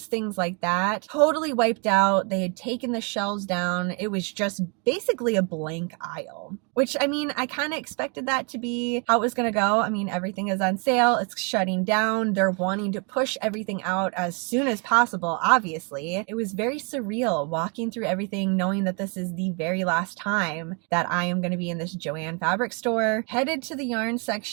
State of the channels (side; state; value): left; quieter; 35.4 dB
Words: things like that, totally wiped out. They had taken the shelves down. It was just basically a blank aisle, which, I mean, I kind of expected that to be how it was going to go. I mean, everything is on sale. It's shutting down. They're wanting to push everything out as soon as possible, obviously. It was very surreal walking through everything, knowing that this is the very last time that I am going to be in this Joann Fabrics store. Headed to the yarn